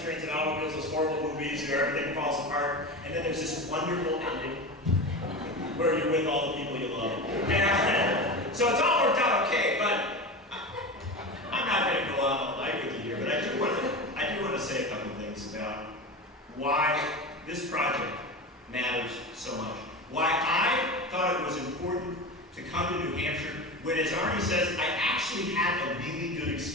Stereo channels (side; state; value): both; normal; correlation 0.26